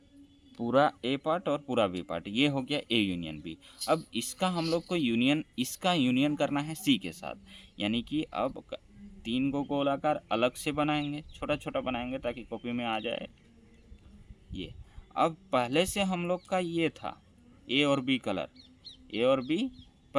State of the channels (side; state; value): both; identical; correlation 1.00